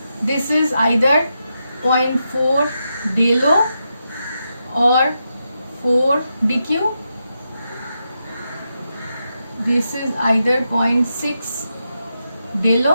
This is either 0.4 delo or 4 dq. This is either 0.6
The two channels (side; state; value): both; inverted; correlation -0.86